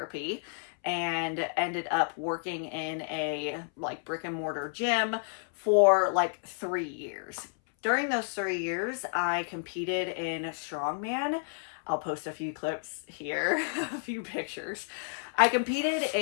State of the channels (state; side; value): silent; right; 57 dB below the other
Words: and ended up working in a like brick and mortar gym for like 3 years. During those 3 years, I competed in strongman. I'll post a few clips here, a few pictures. I competed